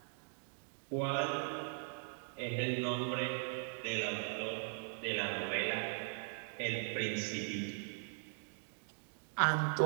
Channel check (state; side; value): silent; left; 51 dB below the other